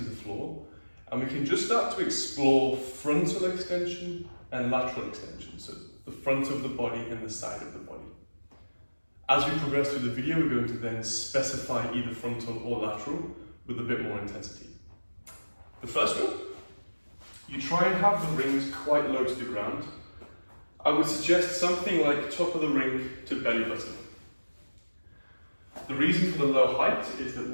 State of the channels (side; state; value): both; inverted; correlation -1.00